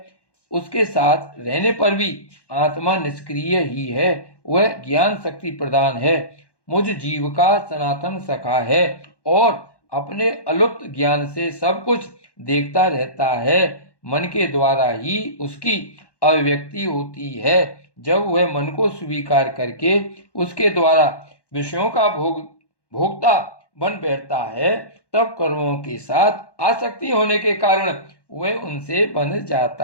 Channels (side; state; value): right; late; 1.1 ms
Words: उसके साथ रहने पर भी आत्मा निष्क्रिय ही है। वह ज्ञान शक्ति प्रदान है, मुझ जीव का सनातन सखा है और अपने अलुप्त ज्ञान से सब कुछ देखता रहता है। मन के द्वारा ही उसकी अभिव्यक्ति होती है। जब वह मन को स्वीकार करके उसके द्वारा विषयों का भोक्ता बन बैठता है, तब कर्मों के साथ आसक्ति होने के कारण वह उनसे बंध